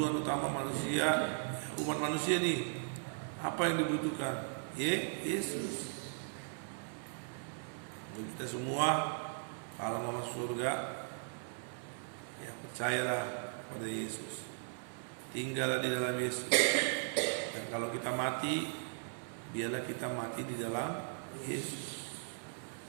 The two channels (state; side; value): silent; left; 53 dB below the other